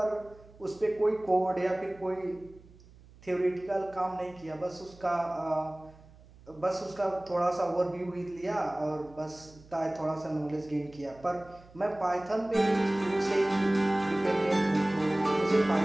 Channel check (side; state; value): right; noise; hum, 24 dB below the sound